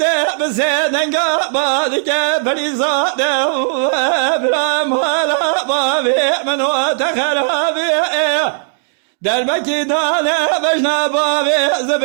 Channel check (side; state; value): left; silent; digital silence